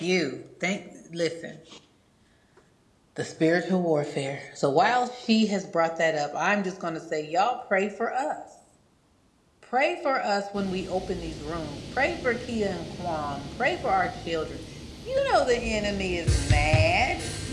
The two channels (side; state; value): both; identical; correlation 1.00